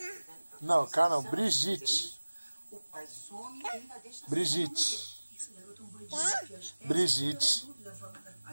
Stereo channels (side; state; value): both; inverted; correlation -1.00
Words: Não, cara, não, Brigitte. Brigitte. Brigitte.